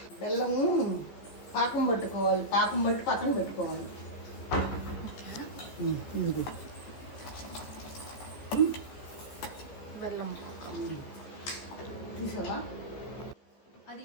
బెల్లము పాకం పట్టుకోవాలి. పాకం బట్టి పక్కన పెట్టుకోవాలి. బెల్లం తీసావా? అది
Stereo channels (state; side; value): late; right; 14 ms